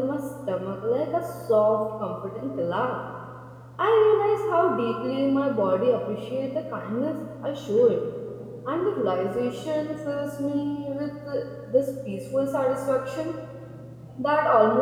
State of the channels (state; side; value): identical; both; correlation 1.00